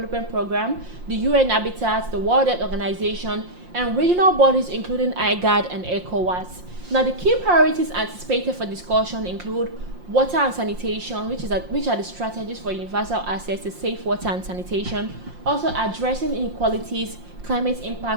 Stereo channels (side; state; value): left; late; 5.6 ms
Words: Programme, the UN Habitat, the World Health Organization, and regional bodies including IGAD and ECOWAS. Now, the key priorities anticipated for discussion include water and sanitation, which are the strategies for universal access to safe water and sanitation, also addressing inequalities, climate